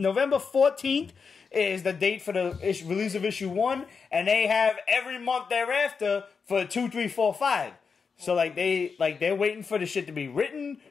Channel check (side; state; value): right; quieter; 5.5 dB